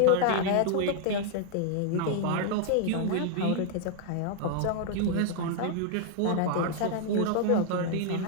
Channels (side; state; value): both; different; correlation -0.01